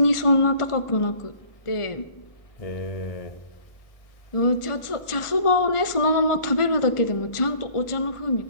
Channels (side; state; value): right; late; 1.4 ms